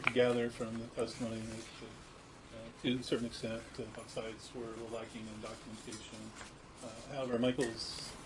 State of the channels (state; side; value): identical; both; correlation 1.00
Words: could gather from the testimony that to a certain extent both sides were lacking in documentation. However, Michael's